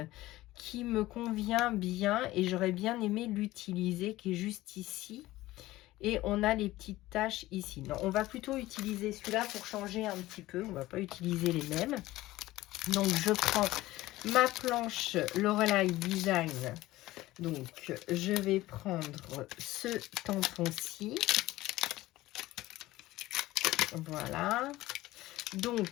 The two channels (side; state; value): right; quieter; 17.2 dB